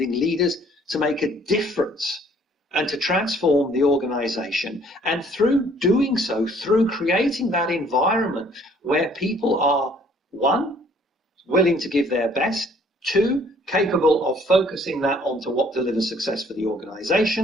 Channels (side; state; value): both; normal; correlation 0.60